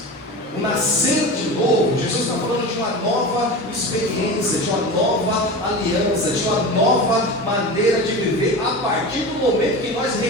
O nascer de novo, Jesus está falando de uma nova experiência, de uma nova aliança, de uma nova maneira de viver a partir do momento que nós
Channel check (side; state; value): both; normal; correlation 0.29